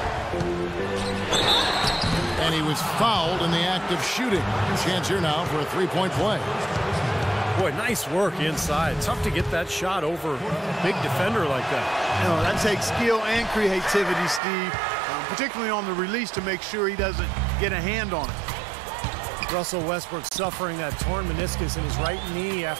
And he was fouled in the act of shooting. Chance here now for a three-point play. Boy, nice work inside. Tough to get that shot over a big defender like that. You know, that takes skill and creativity, Steve. Particularly on the release to make sure he doesn't get a hand on it. Russell Westbrook suffering that torn meniscus in his right knee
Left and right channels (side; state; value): left; drops out; at 14.4 s